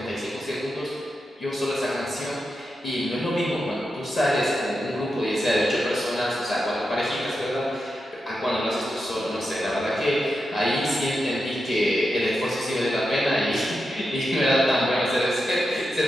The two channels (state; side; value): normal; both; correlation 0.88